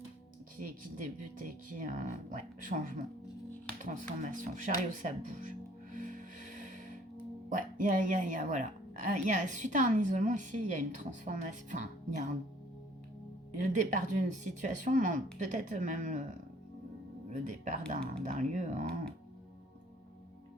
qui débutent et qui... ouais, changement, transformation. Chariot, ça bouge. Ouais, il y a voilà. Suite à un isolement ici, il y a une transformation. Enfin, il y a le départ d'une situation, peut-être même le départ d'un lieu. Hein.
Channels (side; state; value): both; normal; correlation 0.58